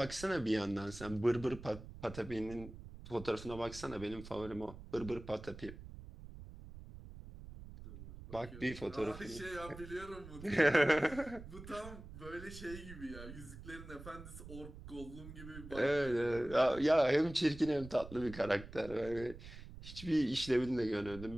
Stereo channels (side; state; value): right; noise; rumble, 14 dB below the sound